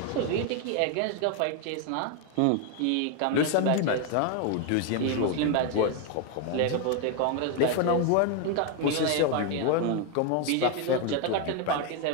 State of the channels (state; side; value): different; both; correlation 0.01